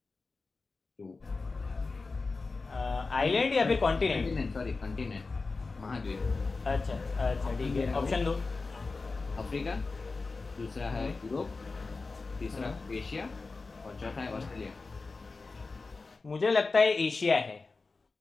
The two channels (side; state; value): right; quieter; 3.9 dB